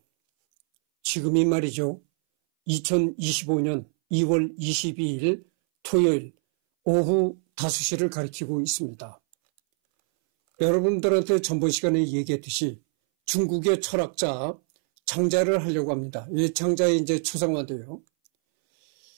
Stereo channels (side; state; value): left; silent; 61 dB below the other